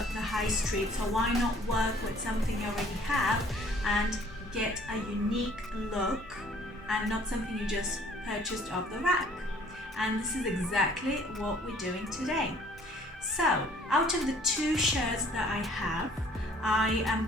high street, so why not work with something you already have and get a unique look and not something you just purchased off the rack. And this is exactly what we're doing today. So, out of the two shirts that I have, I am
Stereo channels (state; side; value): normal; both; correlation 0.56